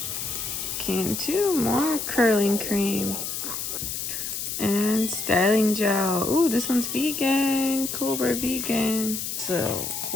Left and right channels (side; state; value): left; noise; hiss, 4 dB below the sound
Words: Cantu more curling cream. And styling gel. Ooh, this one's vegan. Cobra vegan. So,